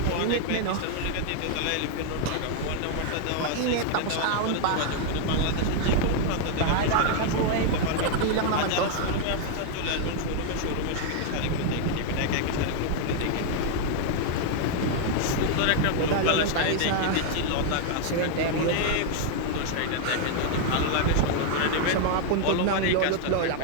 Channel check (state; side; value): different; both; correlation 0.00